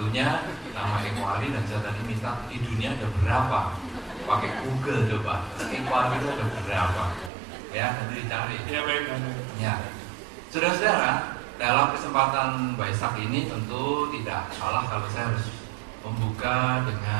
nama Eko Ali, dan saya tadi minta di dunia ada berapa, pakai Google coba Eko Ali itu ada berapa ya, nanti dicari ya. Baik ya, saudara-saudara, dalam kesempatan Waisak ini tentu tidak salah kalau saya harus membuka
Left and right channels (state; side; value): drops out; left; at 7.3 s